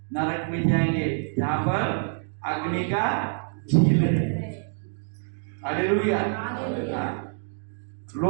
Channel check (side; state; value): left; silent; 61 dB below the other